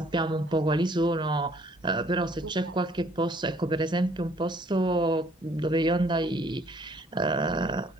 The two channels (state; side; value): normal; both; correlation 0.60